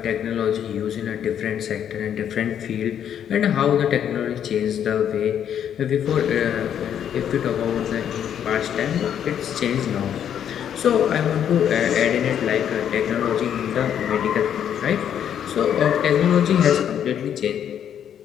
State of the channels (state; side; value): quieter; right; 9.3 dB